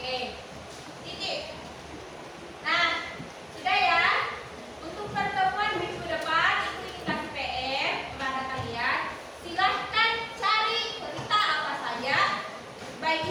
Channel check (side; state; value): both; identical; correlation 1.00